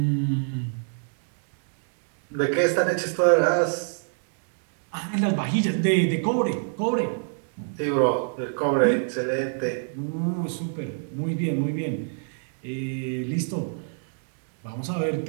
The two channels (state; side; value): silent; left; 61 dB below the other